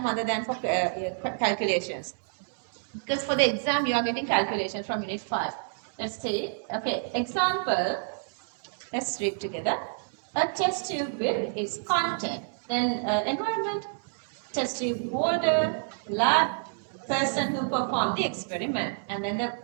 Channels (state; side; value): silent; left; digital silence